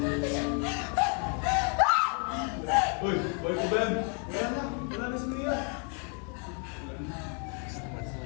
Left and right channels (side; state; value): right; quieter; 39.7 dB